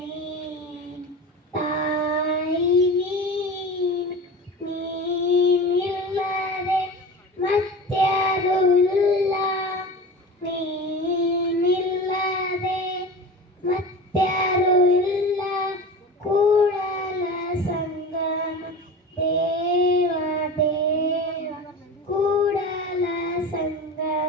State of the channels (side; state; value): both; normal; correlation 0.32